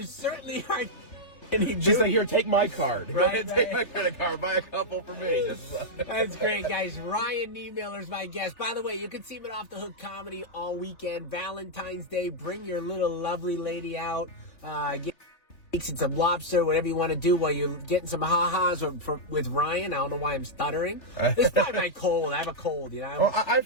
certainly are. She's like, here, take my card. Go Right, ahead, take my credit card. Buy a couple for me. That's great, guys. Ryan Niemiller is my guest. By the way, you can see him at Off the Hook Comedy all weekend. Valentine's Day, bring your little lovely lady out. Get and some lobster, whatever you want to do while you're getting some ha-has with Ryan. I don't know why I'm stuttering. It's probably my cold. I have a cold, you know. Well, I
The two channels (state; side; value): late; right; 3.4 ms